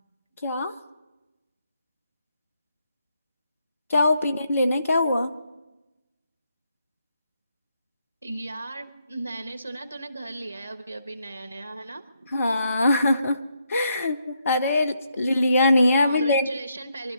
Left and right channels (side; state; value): both; inverted; correlation -0.78